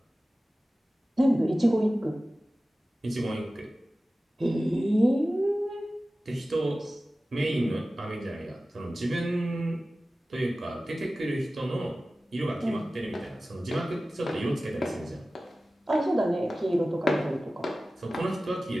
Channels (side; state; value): both; normal; correlation 0.96